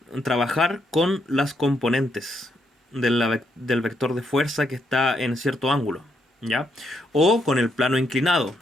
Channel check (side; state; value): both; normal; correlation 0.77